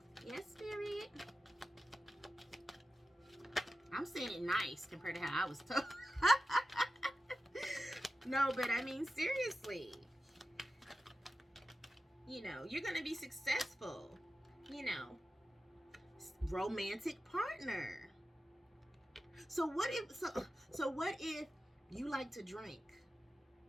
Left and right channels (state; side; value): normal; both; correlation 0.93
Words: Yes, Spirit. I'm saying it nice compared to how I was told. No, but I mean, seriously. You know, you're going to be successful. You know, romantic partner. So what if you like to drink,